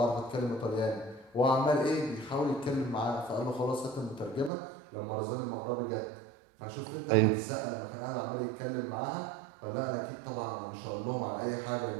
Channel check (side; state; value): left; drops out; at 4.5 s